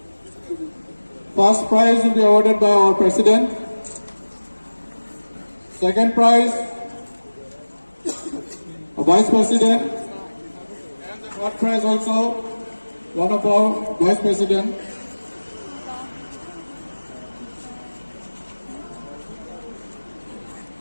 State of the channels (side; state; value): both; inverted; correlation -1.00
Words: First prize will be awarded by our President. Second prize, a Vice President. And the third prize also, one of our Vice President.